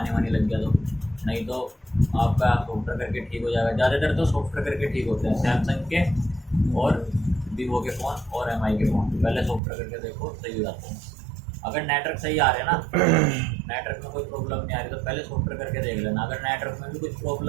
लग गया तो, नहीं तो आपका सॉफ्टवेयर करके ठीक हो जाएगा। ज़्यादातर तो सॉफ्टवेयर करके ठीक होते हैं, सैमसंग के और वीवो के फ़ोन और MI के फ़ोन पहले सॉफ्टवेयर करके देखो, सही हो जाते हैं। अगर नेटवर्क सही आ रहे हैं ना, नेटवर्क में कोई प्रॉब्लम नहीं आ रही तो पहले सॉफ्टवेयर करके देख लेना। अगर नेटवर्क में भी कुछ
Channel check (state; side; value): drops out; left; at 9.6 s